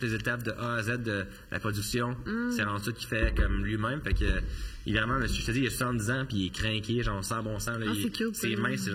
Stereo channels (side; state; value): both; identical; correlation 1.00